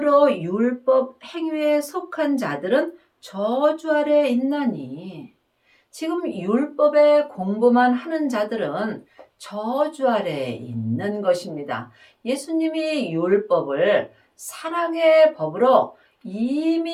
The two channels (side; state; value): both; identical; correlation 1.00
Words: 율법 행위에 속한 자들은 저주 아래 있나니 지금 율법의 공부만 하는 자들은 저주 아래 있는 것입니다. 예수님이 율법을 사랑의 법으로